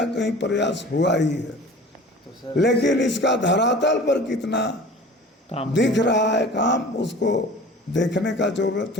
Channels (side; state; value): both; normal; correlation 0.41